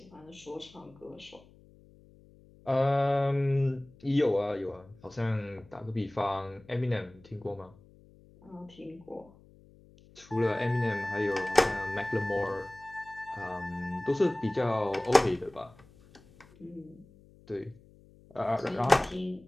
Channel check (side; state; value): left; noise; hum, 25 dB below the sound